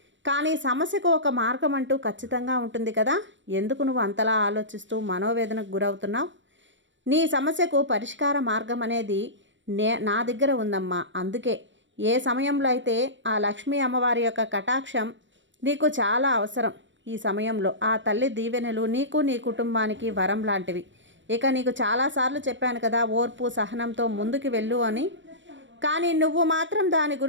కానీ సమస్యకు ఒక మార్గం అంటూ ఖచ్చితంగా ఉంటుంది కదా. ఎందుకు నువ్వు అంతలా ఆలోచిస్తూ మనోవేదనకు గురవుతున్నావు? నీ సమస్యకు పరిష్కార మార్గం అనేది నా దగ్గర ఉందమ్మా. అందుకే ఏ సమయంలో అయితే ఆ లక్ష్మీ అమ్మవారి యొక్క కటాక్షం నీకు చాలా అవసరం, ఈ సమయంలో ఆ తల్లి దీవెనలు నీకు నీ కుటుంబానికి వరం లాంటివి. ఇక నీకు చాలాసార్లు చెప్పాను కదా, ఓర్పు సహనంతో ముందుకు వెళ్ళు అని. కానీ నువ్వు మాత్రం దాని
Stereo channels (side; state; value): left; late; 0.54 ms